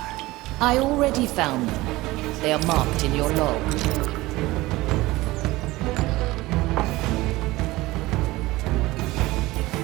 I already found them. They are marked in your log.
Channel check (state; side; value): quieter; left; 19.3 dB